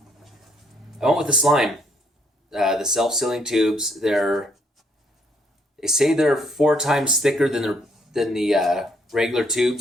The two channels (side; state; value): both; normal; correlation 0.68